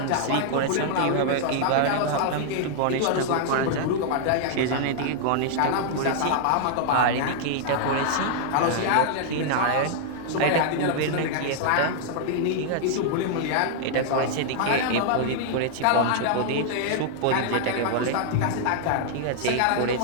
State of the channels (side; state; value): both; different; correlation -0.01